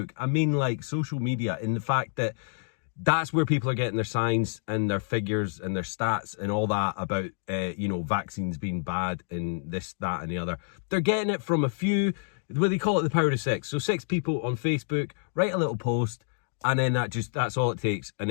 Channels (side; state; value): right; silent; digital silence